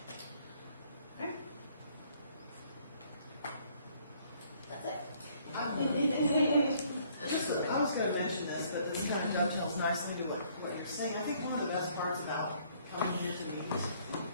That's it. I was going to mention this, but this kind of dovetails nicely to what you're saying. I think one of the best parts about coming here to meet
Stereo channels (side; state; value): both; inverted; correlation -0.63